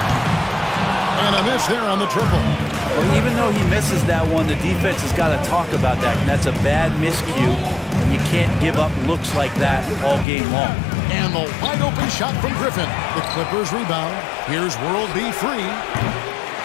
And a miss there on the triple. Well, even though he misses that one, the defense has got to talk about that. And that's a bad miscue. And you can't give up looks like that all game long. And the wide open shot from Griffin. The Clippers rebound. Here's World B Free.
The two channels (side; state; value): right; drops out; at 10.2 s